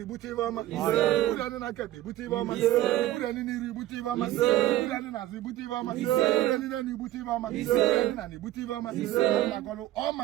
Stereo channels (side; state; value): left; quieter; 14.7 dB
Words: igbute ibe ọma iburu ndị na-aketa igbute ibe ọma iburu ndị n'iru igbute ibe ọma iburu ndị n'azụ igbute ibe ọma iburu ndị n'elu igbute ibe ọma iburu ndị na igbute ibe ọma all